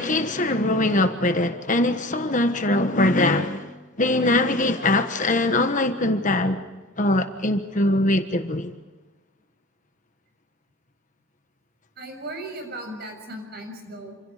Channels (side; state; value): both; normal; correlation 0.41